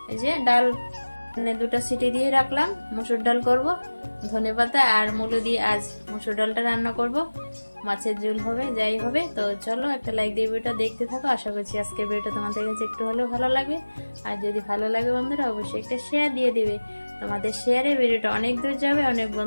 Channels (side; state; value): both; inverted; correlation -1.00